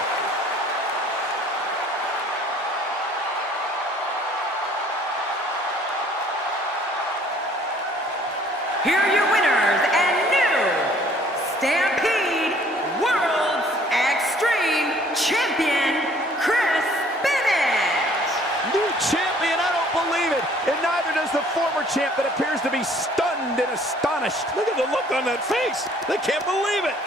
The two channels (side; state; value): both; normal; correlation 0.57